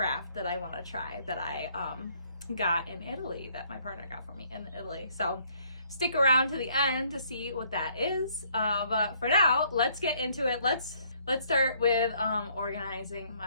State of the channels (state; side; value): inverted; both; correlation -0.65